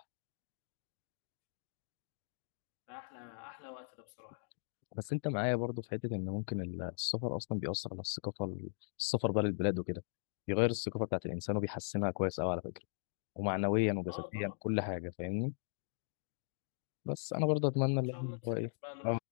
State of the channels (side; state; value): right; silent; digital silence